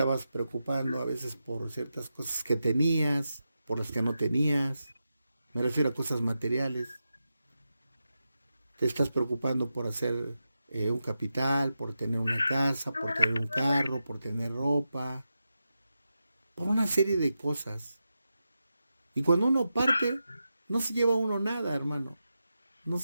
preocupando a veces por ciertas cosas que tenías, por las que no tenías. Me refiero a cosas materiales. Te estás preocupando por hacer un capital, por tener una casa, por tener un carro, por tener ropa, por una serie de cosas. Y cuando uno parte, no se lleva uno nada, hermano. No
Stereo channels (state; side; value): inverted; both; correlation -0.90